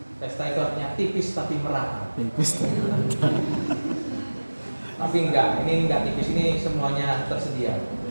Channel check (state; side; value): inverted; both; correlation -1.00